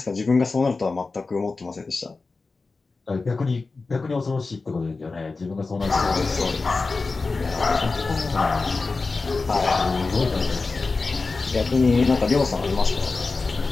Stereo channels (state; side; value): quieter; right; 3.9 dB